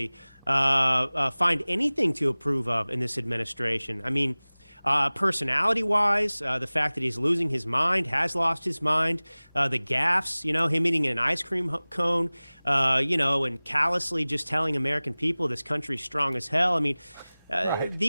find anything to approve of in this administration. I mean, personality-wise, the fact that he's losing his mind, has lost his mind, the gaffes, him eating an ice cream cone, and callously just telling American people this country's strong as hell. I mean, right.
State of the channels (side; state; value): both; inverted; correlation -0.99